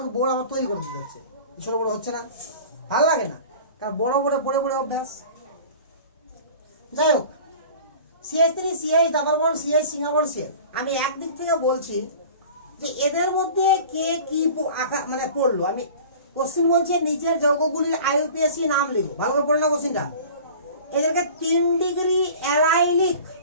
বোর্ড আমার তৈরি করতে যাচ্ছে, ছোট বড় হচ্ছে না, ভালো লাগে না, কারণ বড় বড় পড়ে পড়ে অভ্যাস। যাই হোক CH3 CH double bond CH single bond CL। আমি একদিক থেকে বলছি যে এদের মধ্যে কে কি মানে পড়লো। আমি কোশ্চেন বলছে নিচের যৌগগুলির IUPAC নাম লিখো, ভালো করে পড়ে না কোশ্চেনটা। এদেরকে 3 ডিগ্রি অ্যারাইলিক,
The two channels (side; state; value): both; inverted; correlation -0.41